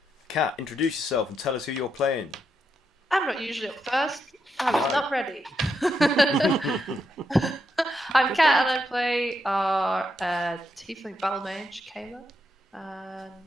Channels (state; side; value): normal; both; correlation 0.82